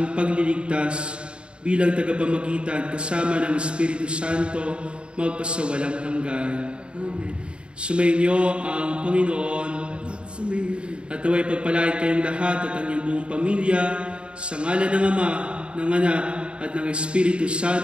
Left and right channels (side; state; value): left; late; 0.055 ms